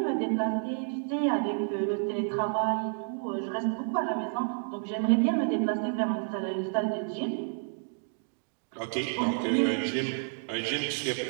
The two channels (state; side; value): silent; left; 58 dB below the other